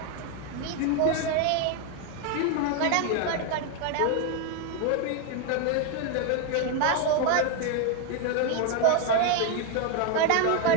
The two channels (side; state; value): both; different; correlation 0.01